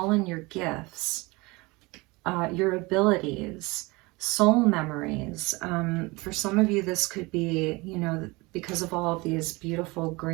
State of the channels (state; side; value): quieter; left; 24.1 dB